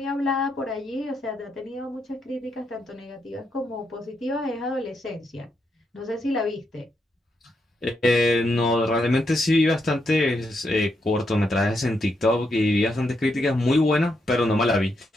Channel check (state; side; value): normal; both; correlation 0.81